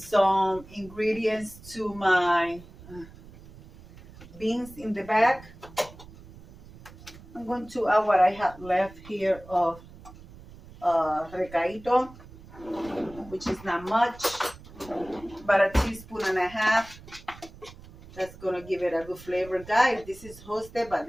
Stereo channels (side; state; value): right; noise; rumble, 19 dB below the sound